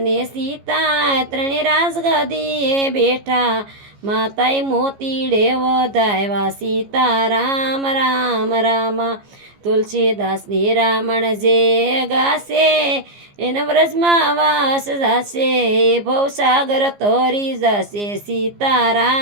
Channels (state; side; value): late; left; 15 ms